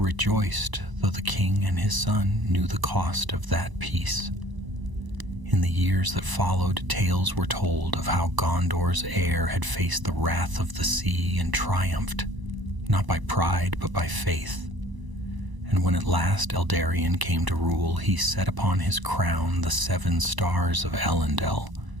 though the king and his son knew the cost of that peace. In the years that followed, tales were told of how Gondor's heir had faced the wrath of the sea and triumphed, not by pride but by faith. And when at last Eldarion came to rule, he set upon his crown the 7 stars of Elendil,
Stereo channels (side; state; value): left; late; 1.0 ms